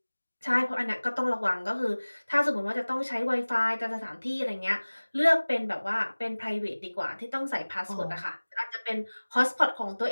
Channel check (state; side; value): inverted; both; correlation -1.00